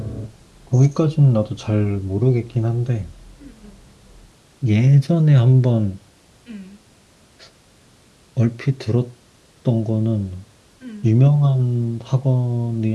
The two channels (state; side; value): identical; both; correlation 1.00